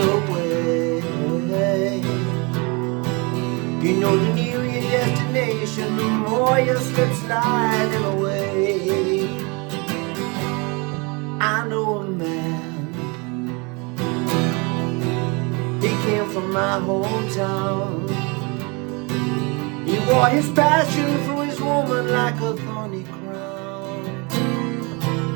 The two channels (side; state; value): left; quieter; 29.6 dB